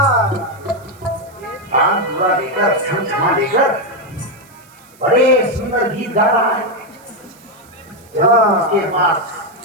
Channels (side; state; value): right; noise; hiss, 27 dB below the sound